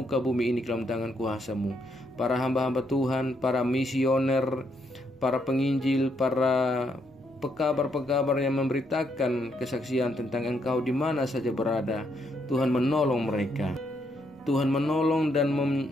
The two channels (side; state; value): both; normal; correlation 0.75